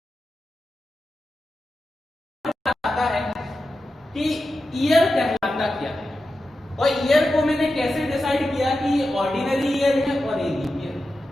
आता है कि ईयर कहलाता क्या है, और ईयर को मैंने कैसे डिसाइड किया कि ऑर्डिनरी ईयर है और ये लीप ईयर।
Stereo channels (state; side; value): normal; both; correlation 0.91